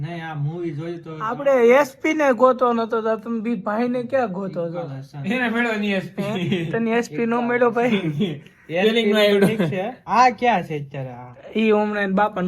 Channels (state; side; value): identical; both; correlation 1.00